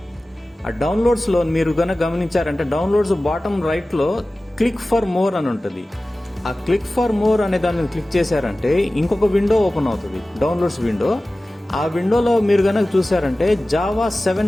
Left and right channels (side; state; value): both; normal; correlation 0.97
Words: ఆ డౌన్లోడ్స్ లో మీరు కనుక గమనించారంటే డౌన్లోడ్స్ బాటమ్ రైట్ లో క్లిక్ ఫర్ మోర్ అని ఉంటుంది. ఆ క్లిక్ ఫర్ మోర్ అనే దాన్ని క్లిక్ చేశారంటే ఇంకొక విండో ఓపెన్ అవుతుంది, డౌన్లోడ్స్ విండో. ఆ విండోలో మీరు కనుక చూసారంటే జావా